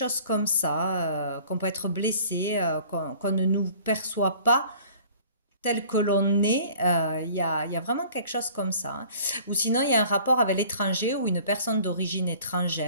comme ça, qu'on peut être blessé, qu'on ne nous perçoit pas tel que l'on est. Il y a vraiment quelque chose comme ça, hein. Ou sinon, il y a un rapport avec l'étranger ou une personne d'origine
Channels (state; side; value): inverted; both; correlation -0.50